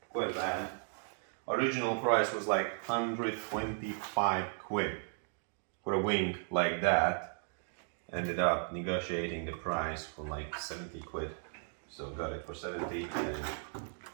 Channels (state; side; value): silent; left; 54 dB below the other